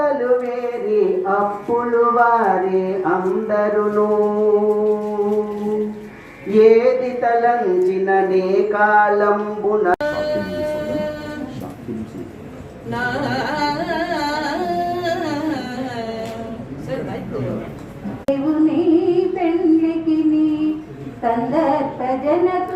వేరి అప్పులు వారే అందరును. ఏది తలంచిన నే కాలంబున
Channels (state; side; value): identical; both; correlation 1.00